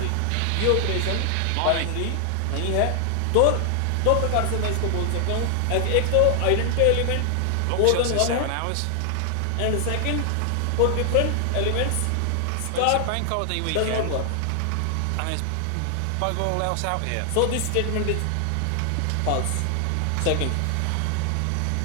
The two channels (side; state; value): both; different; correlation 0.00